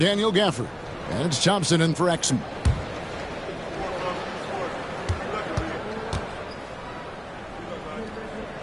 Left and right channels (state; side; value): identical; both; correlation 1.00